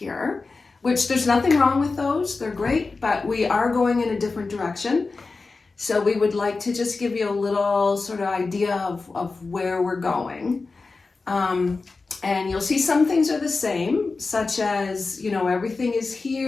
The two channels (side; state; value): right; quieter; 4.0 dB